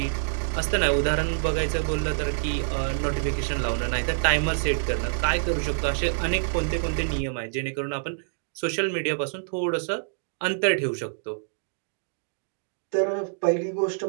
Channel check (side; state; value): left; silent; digital silence